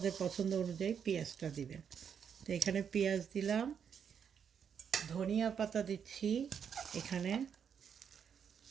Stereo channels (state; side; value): quieter; left; 7.5 dB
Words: পছন্দ অনুযায়ী পেঁয়াজটা দিবেন। তো এখানে পেঁয়াজ দিলাম, ধনিয়া পাতা দিচ্ছি এখানে,